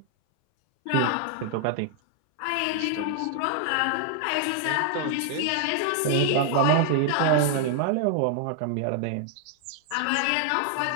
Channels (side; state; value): both; different; correlation 0.00